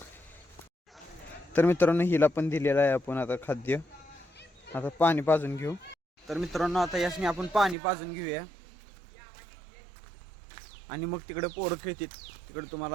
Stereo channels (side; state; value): left; drops out; at 7.8 s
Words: तर मित्रांनो, हिला पण दिलेलं आहे आपण आता खाद्य. आता पाणी पाजून घेऊ. तर मित्रांनो, आता यासनी आपण पाणी पाजून घेऊया आणि मग तिकडे पोरं खेळतात. तिकडे